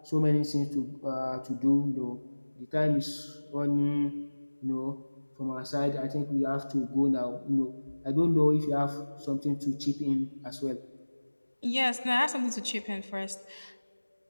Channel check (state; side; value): inverted; both; correlation -1.00